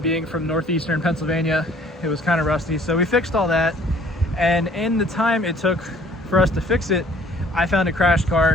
being from northeastern Pennsylvania, it was kind of rusty. So we fixed all that, and in the time it took for us to fix it, I found a crashed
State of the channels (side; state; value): both; normal; correlation 0.56